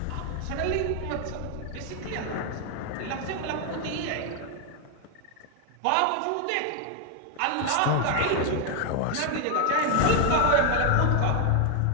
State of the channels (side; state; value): both; different; correlation 0.01